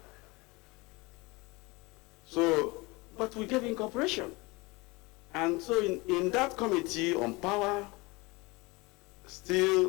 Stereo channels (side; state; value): right; quieter; 24.6 dB